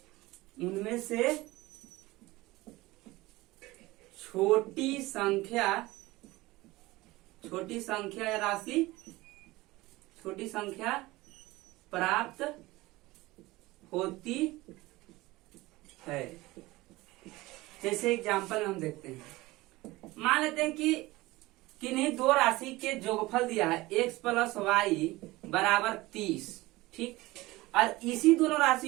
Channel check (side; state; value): left; quieter; 19.8 dB